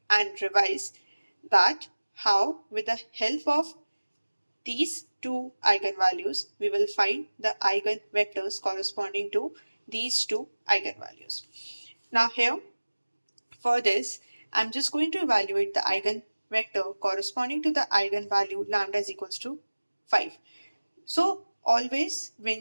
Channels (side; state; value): both; inverted; correlation -1.00